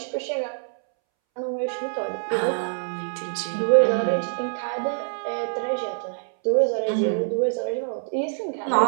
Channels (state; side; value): silent; left; 62 dB below the other